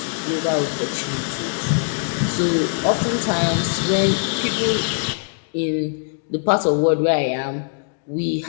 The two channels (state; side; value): silent; right; 58 dB below the other